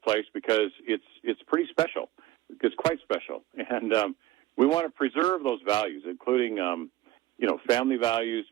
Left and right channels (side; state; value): left; quieter; 15.6 dB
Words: place because it's pretty special. It's quite special. And we want to preserve those values, including, family values,